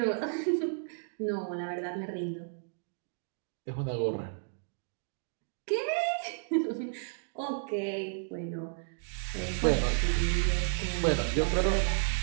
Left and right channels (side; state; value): left; silent; digital silence